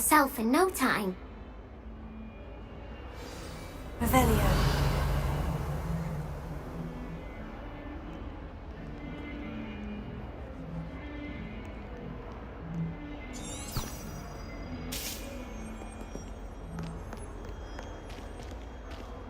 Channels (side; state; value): both; identical; correlation 1.00